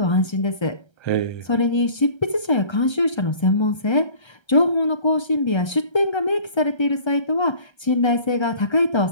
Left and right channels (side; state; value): right; late; 1.3 ms